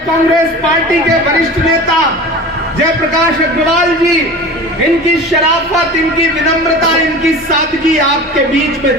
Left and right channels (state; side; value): normal; both; correlation 0.36